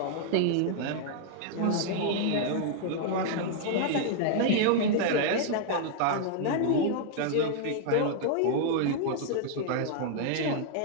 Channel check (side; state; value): both; different; correlation -0.01